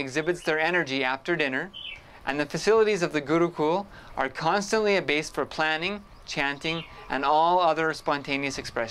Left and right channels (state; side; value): identical; both; correlation 1.00